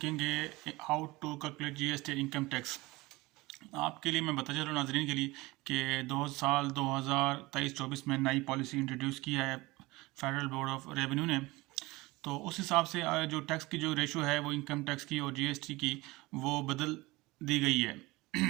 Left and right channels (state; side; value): quieter; left; 21.4 dB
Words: how to calculate GST income tax. आपके लिए मैं बताता चलूँ नाज़रीन के लिए कि 2023-24 में नई पॉलिसी इंट्रोड्यूस किया है फेडरल बोर्ड ऑफ रेवेन्यू ने। तो उस हिसाब से जो टैक्स की जो रेशो है वो इनकम टैक्स की और जीएसटी की वो बदल दी गई है।